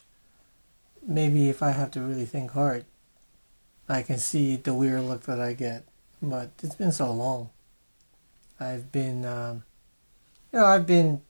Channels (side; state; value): both; inverted; correlation -1.00